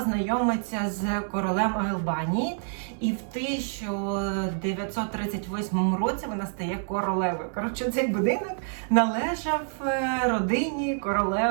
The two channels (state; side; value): silent; left; digital silence